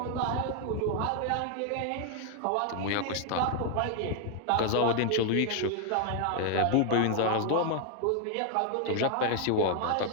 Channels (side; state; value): both; different; correlation 0.01